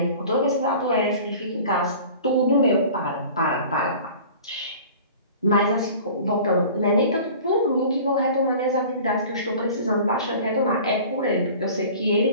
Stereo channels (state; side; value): inverted; both; correlation -0.43